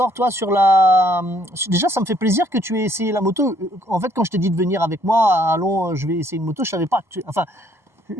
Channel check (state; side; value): late; left; 1.0 ms